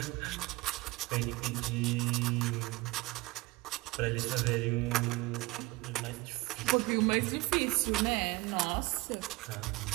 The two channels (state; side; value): quieter; left; 22.0 dB